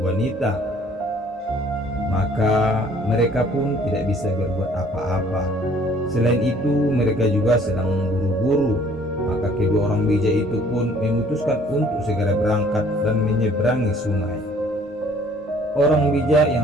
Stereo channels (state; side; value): normal; both; correlation 0.57